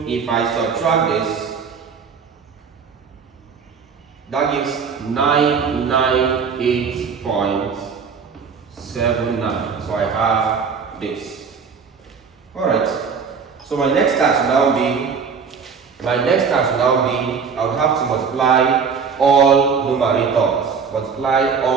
if I subtract this, that gives 998.79. So I have this. Alright, so my next task will now be, I will have to multiply all numerators.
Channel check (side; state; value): left; quieter; 5.9 dB